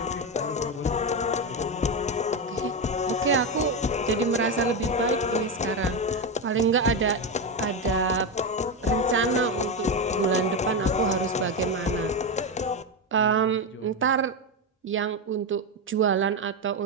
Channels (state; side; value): normal; both; correlation 0.12